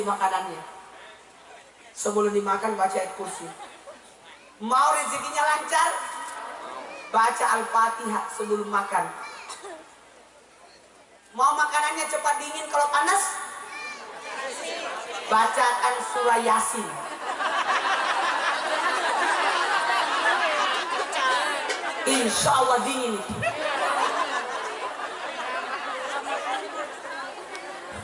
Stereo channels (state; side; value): identical; both; correlation 1.00